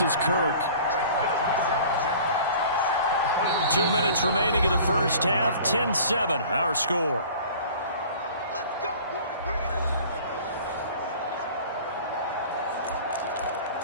is Kirk. 2 minutes remaining in the first half. 10-7 our score.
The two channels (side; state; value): both; inverted; correlation -0.46